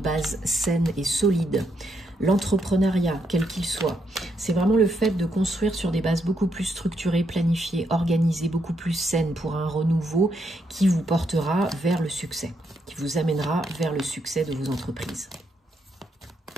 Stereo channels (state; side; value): normal; both; correlation 0.78